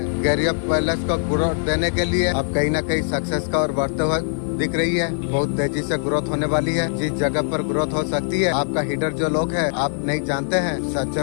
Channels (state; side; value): silent; right; digital silence